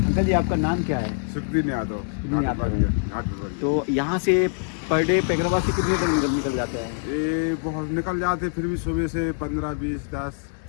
अंकल जी आपका नाम क्या है? सुखदीन यादव, सुखदीन यादव। घाट पिपरिया। तो यहाँ से पर डे पैगराबाद से कितने तक निकल जाते हैं? ये बहुत निकल जाते, फिर भी सुबह से 15, 20, 10,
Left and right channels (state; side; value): silent; right; digital silence